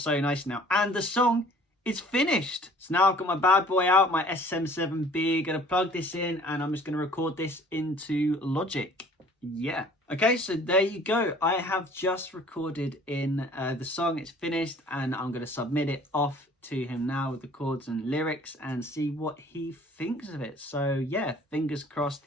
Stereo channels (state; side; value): normal; both; correlation 0.52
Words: nice now, and the song is finished. So now I've got my bad boy out, my SM7B. Gonna plug this in and I'm just gonna record this into Logic. Yeah. Okay, so there you go. I have just recorded in the song. It's finished and I'm going to submit it off to him now with the chords and lyrics and see what he thinks of it. So yeah, fingers crossed